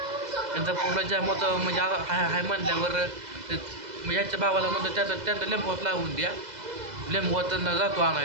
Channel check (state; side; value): late; left; 2.0 ms